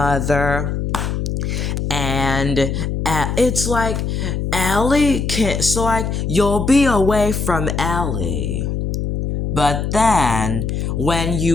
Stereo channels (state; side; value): noise; left; hum, 2 dB below the sound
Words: And it's like Ellie can, so like you'll be away from Ellie. But then when